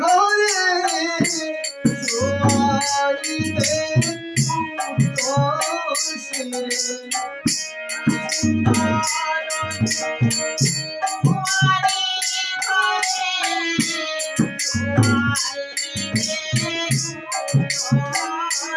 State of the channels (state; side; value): identical; both; correlation 1.00